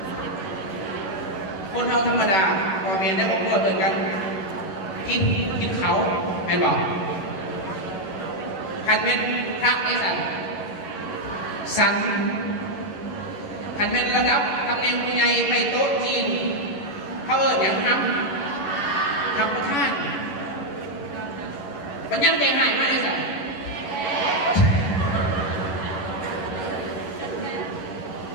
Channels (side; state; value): right; late; 11 ms